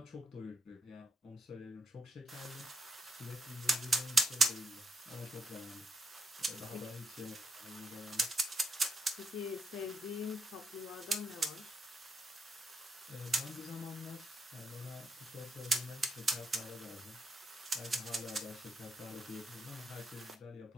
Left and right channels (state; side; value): normal; both; correlation 0.81